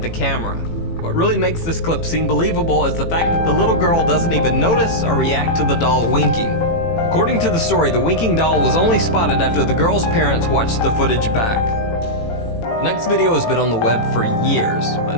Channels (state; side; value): late; right; 18 ms